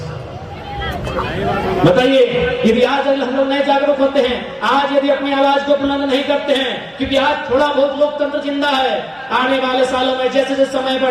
बताइए, यदि आज हम लोग नए जागरूक होते हैं, आज यदि अपनी आवाज को बुलंद नहीं करते हैं, क्योंकि आज थोड़ा बहुत लोकतंत्र जिंदा है, आने वाले सालों में जैसे जैसे समय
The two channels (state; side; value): identical; both; correlation 1.00